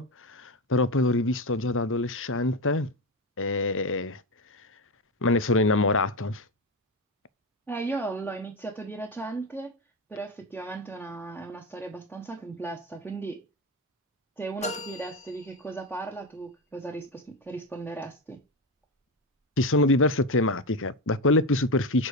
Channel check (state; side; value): normal; both; correlation 0.16